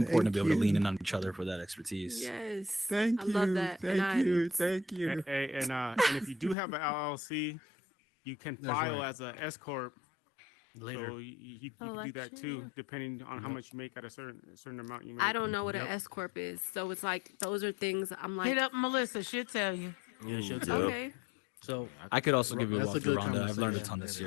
to Thank be able to lean you. in on each other for that expertise. Yes, Thank I love you. that, and Thank you. Thank you. And if you do have an LLC, you can That's file right. as a S corp. Later. So you can do that Election, too, yeah. depending on how Yep. much you make at a certain amount you make. I don't know what an Yep. S corp is, so it's like those are things I'm Hit like, up Melissa. She'll tell you. Yeah, she'll Ooh, tell yep. you. okay, So I could also give you a that's a walkthrough, good Rhonda. I've learned a conversation. ton That this is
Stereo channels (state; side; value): drops out; right; at 6.6 s